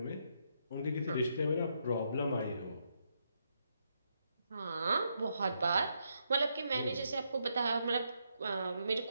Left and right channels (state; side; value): inverted; both; correlation -0.79